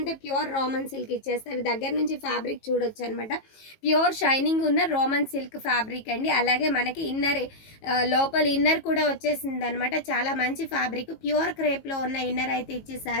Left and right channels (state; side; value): late; right; 18 ms